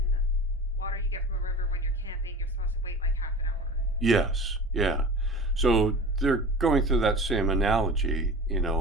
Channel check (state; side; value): normal; both; correlation 0.36